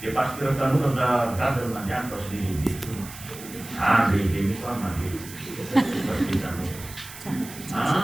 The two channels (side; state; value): right; noise; hiss, 15 dB below the sound